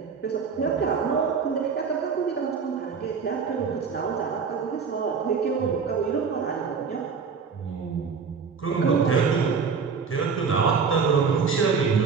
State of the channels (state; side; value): quieter; left; 5.7 dB